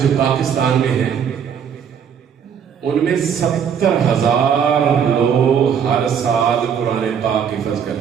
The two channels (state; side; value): quieter; left; 7.7 dB